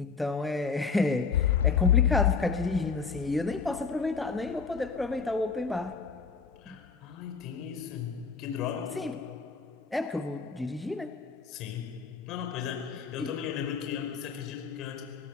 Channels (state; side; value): quieter; right; 5.3 dB